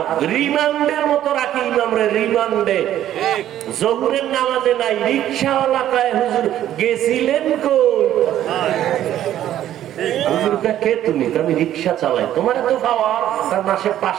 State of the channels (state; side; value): quieter; left; 12.0 dB